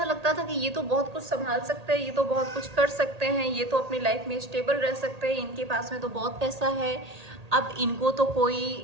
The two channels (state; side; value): late; left; 1.8 ms